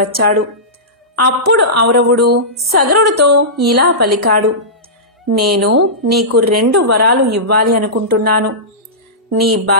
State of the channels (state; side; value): normal; both; correlation -0.18